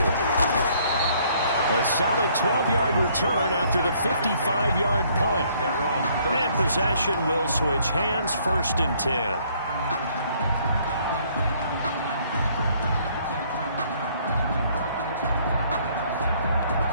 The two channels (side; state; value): both; inverted; correlation -0.63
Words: A solid 12-yard return after the 55-yard punt. And possession will switch hands, 1st and 10.